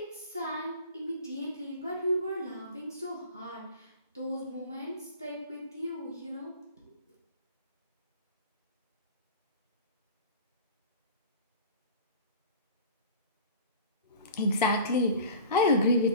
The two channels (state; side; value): inverted; both; correlation -0.39